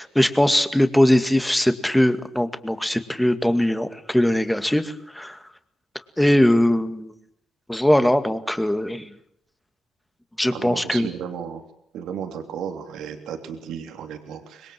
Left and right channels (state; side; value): normal; both; correlation 0.98